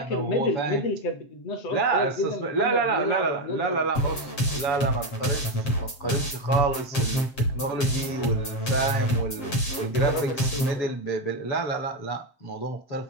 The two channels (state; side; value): late; right; 7.6 ms